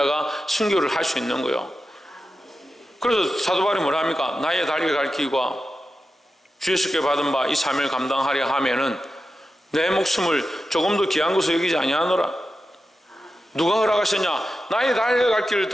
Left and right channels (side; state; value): both; normal; correlation 0.91